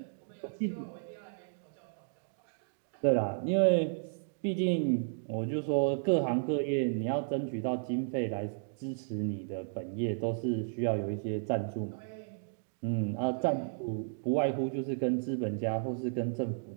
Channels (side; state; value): left; silent; digital silence